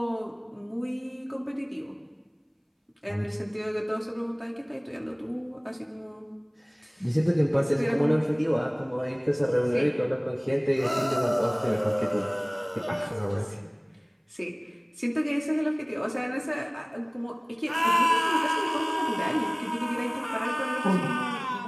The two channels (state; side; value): identical; both; correlation 1.00